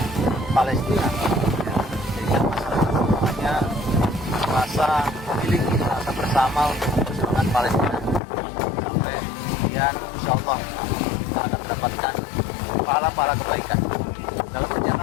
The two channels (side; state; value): right; drops out; at 8.2 s